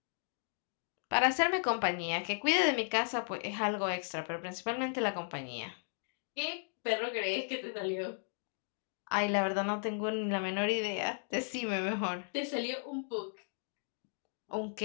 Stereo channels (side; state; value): right; silent; digital silence